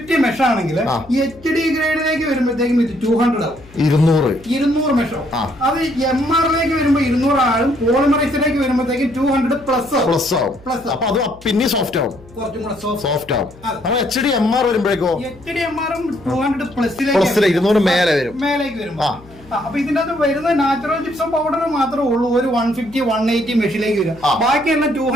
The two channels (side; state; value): left; noise; hum, 23 dB below the sound